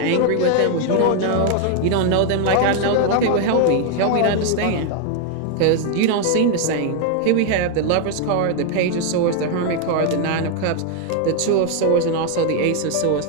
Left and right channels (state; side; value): different; both; correlation 0.00